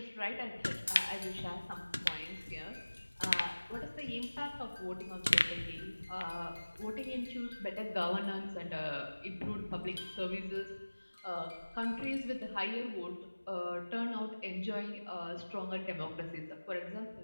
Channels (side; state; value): both; inverted; correlation -1.00